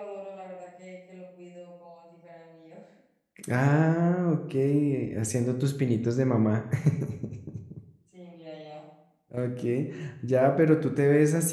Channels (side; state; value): both; identical; correlation 1.00